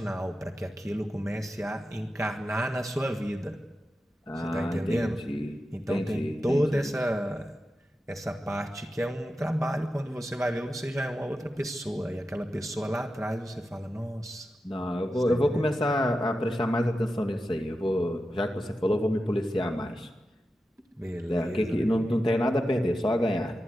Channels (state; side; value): normal; both; correlation 0.91